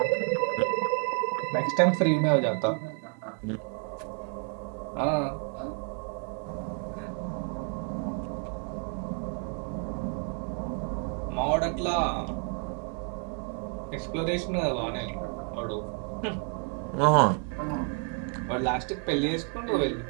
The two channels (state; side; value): quieter; left; 37.0 dB